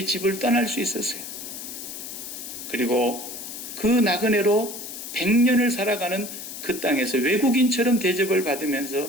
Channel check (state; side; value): noise; left; hiss, 9 dB below the sound